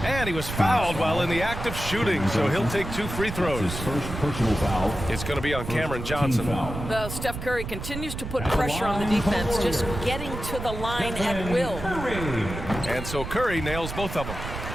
And he was fouled while in the act of shooting, so he'll take 2 free throws. His first personal foul. It's going to be on Cameron Johnson. Well, Steph Curry continues to put pressure on the defense, just getting to the line at will. And so Curry nails both of them.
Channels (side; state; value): right; noise; rumble, 7 dB below the sound